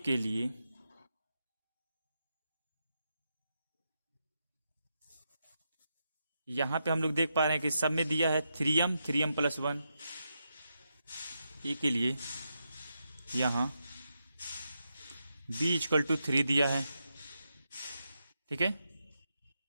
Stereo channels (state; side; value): inverted; both; correlation -0.85